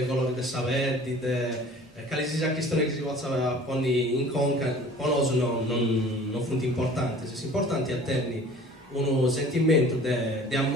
colori dei saperi, quali sia questioni che si possono porre in conca, per noi non sono importanti. Se importanti è tenere un sentimento di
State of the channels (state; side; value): normal; both; correlation 0.47